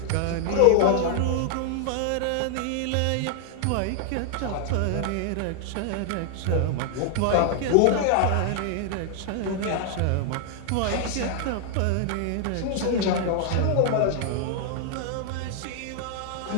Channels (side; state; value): both; different; correlation 0.00